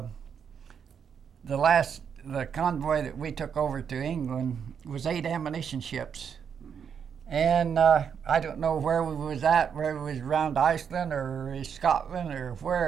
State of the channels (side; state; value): left; quieter; 7.4 dB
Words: the convoy that we took over to England was 8 ammunition ships, and I don't know where we was at, where we was around Iceland or Scotland or